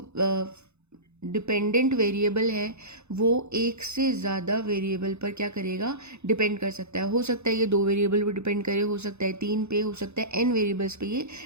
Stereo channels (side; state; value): left; late; 0.81 ms